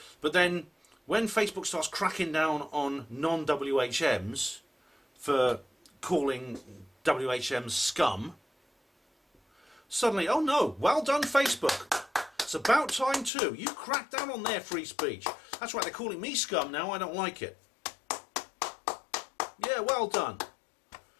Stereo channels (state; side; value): drops out; right; at 13.3 s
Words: But then when Facebook starts cracking down on non-WHMs for calling WHMs scum, suddenly, oh no, well done Facebook. It's about time too. You crack down on their free speech. That's right, they're calling me scum now, I don't like it. Yeah, well done.